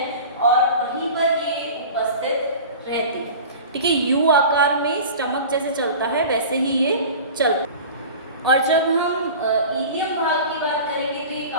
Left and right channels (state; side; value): inverted; both; correlation -0.37